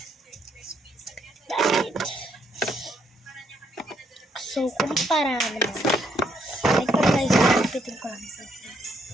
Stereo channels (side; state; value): both; normal; correlation 0.73